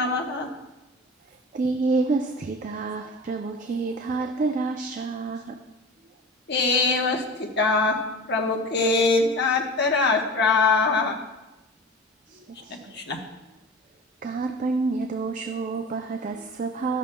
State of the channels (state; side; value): normal; both; correlation 0.35